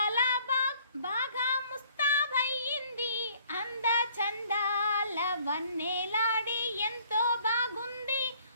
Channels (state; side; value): inverted; both; correlation -0.59